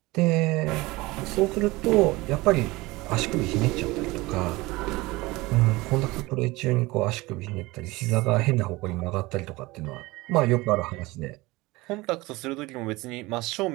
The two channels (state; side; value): quieter; left; 21.4 dB